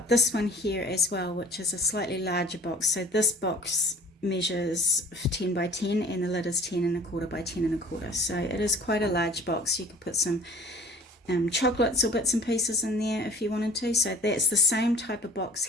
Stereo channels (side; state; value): both; normal; correlation 0.48